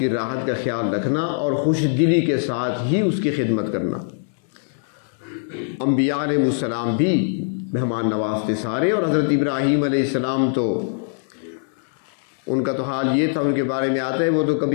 راحت کا خیال رکھنا اور خوش دلی کے ساتھ ہی اس کی خدمت کرنا. انبیاء علیہ السلام بھی مہمان نواز تھے سارے, اور حضرت ابراہیم علیہ السلام تو ان کا تو حال یہ تھا, ان کے بارے میں آتا ہے وہ تو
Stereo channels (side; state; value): right; silent; 59 dB below the other